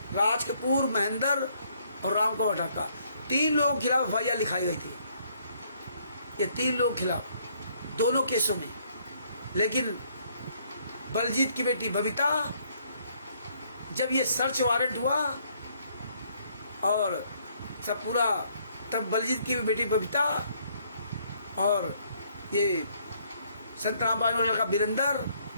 राज कपूर, महेंद्र और राम कुमार ढाका, 3 लोगों के खिलाफ FIR लिखाई गई थी। ये 3 लोगों के खिलाफ दोनों केसों में। लेकिन बलजीत की बेटी बबीता, जब ये सर्च वारंट हुआ और सब पूरा, तब बलजीत की बेटी बबीता और ये संत रामपाल का लड़का वीरेंद्र,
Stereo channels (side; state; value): both; inverted; correlation -0.67